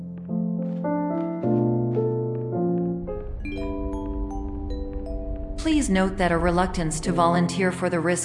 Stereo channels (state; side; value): identical; both; correlation 1.00